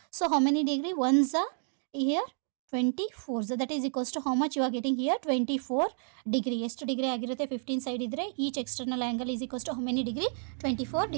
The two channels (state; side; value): silent; left; digital silence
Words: So how many degree? 1 here 24, that is equals to how much you are getting here? 24 degree. ಎಷ್ಟು ಡಿಗ್ರಿ ಆಗಿರುತ್ತೆ? 15 ಸೈಡ್ ಇದ್ದರೆ each external angle is equals to how many degree? 24